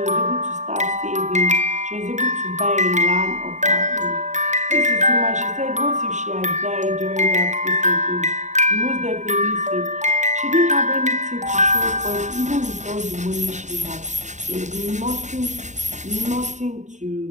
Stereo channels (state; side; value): late; left; 0.34 ms